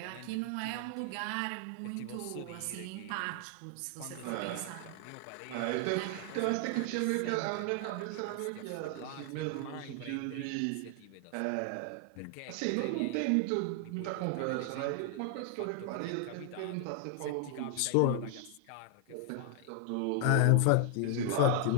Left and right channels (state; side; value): different; both; correlation 0.00